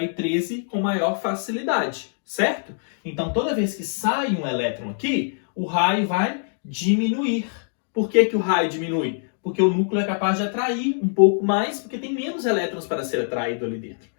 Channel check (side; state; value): right; silent; digital silence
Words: 13 com maior facilidade, certo? Então, toda vez que sai um elétron aqui, o raio vai diminuir. Por que que o raio diminui? Porque o núcleo é capaz de atrair um pouco mais, porque tem menos elétrons para ser atraído ali dentro.